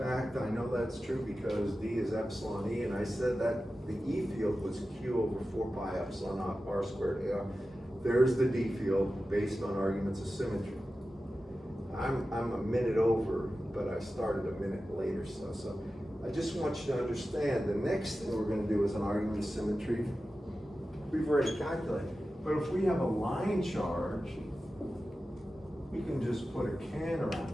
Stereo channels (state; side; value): normal; both; correlation 0.94